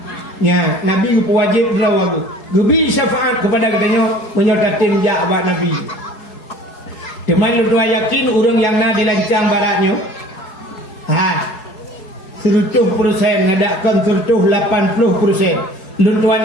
Ya, Nabi ku wajib lawagu. Gubi syafaat kepada katanya menyotatin ja abad Nabi. Deman lu yakin urang yang na dilancang baratnya. 100% ngadakan 80%. Lun tuan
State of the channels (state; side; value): late; right; 4.7 ms